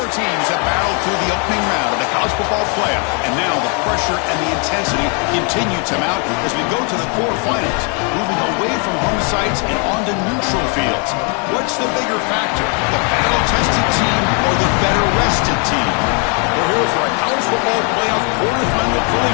teams have battled through the opening round of the college football playoff, and now the pressure and the intensity continue to mount as we go to the quarterfinals, moving away from home sites and onto neutral fields. What's the bigger factor, the battle-tested team or the better-rested team? We're here for a college football playoff quarterfinal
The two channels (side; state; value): right; quieter; 37.0 dB